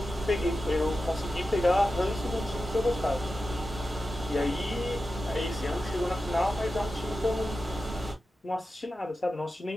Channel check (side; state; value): both; normal; correlation 0.92